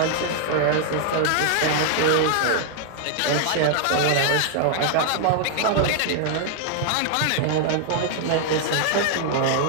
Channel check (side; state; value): both; different; correlation 0.00